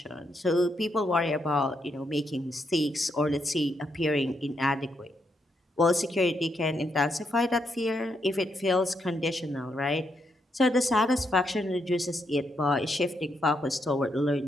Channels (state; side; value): normal; both; correlation 0.79